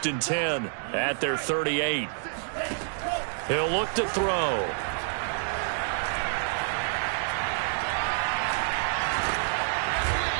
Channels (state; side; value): silent; left; digital silence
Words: and 10 at their 38. He'll look to throw.